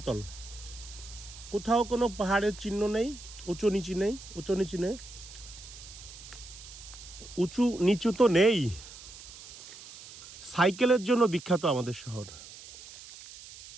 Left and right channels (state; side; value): noise; right; hiss, 16 dB below the sound